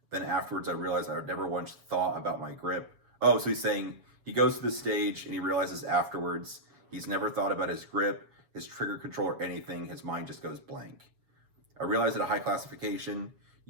then afterwards I realize I never once thought about my grip. Oh, so he's saying he goes to the stage and he realizes afterwards he's never thought about his grip, his trigger control, or anything. His mind just goes blank. I realize at a high classification,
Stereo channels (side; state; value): left; late; 7.2 ms